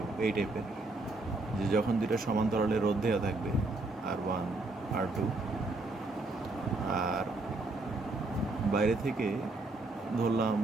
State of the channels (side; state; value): left; quieter; 3.1 dB